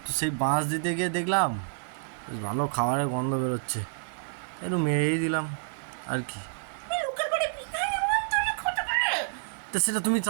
তো সেই বাঁশ দিতে গিয়ে দেখলাম বেশ ভালো খাবারের গন্ধ বেরোচ্ছে, একটু মেরেই দিলাম আর কি। তুমি লোকের বাড়ি বিনা নিমন্ত্রণে খেতে পারে? তো সেটা তুমি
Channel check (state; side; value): silent; left; 59 dB below the other